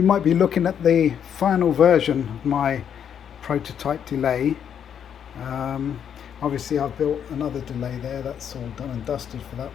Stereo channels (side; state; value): right; quieter; 8.5 dB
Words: might be looking at the final version of my prototype delay. Um, Obviously, I've built another delay there. That's all done and dusted for that